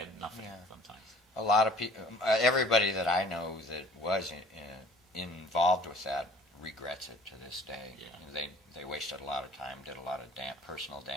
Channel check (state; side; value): normal; both; correlation 0.51